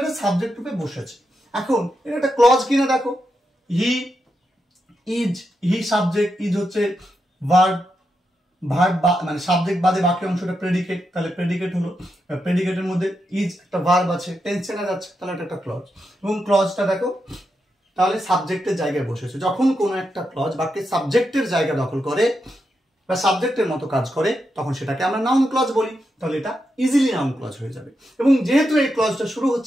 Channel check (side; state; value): both; normal; correlation 0.85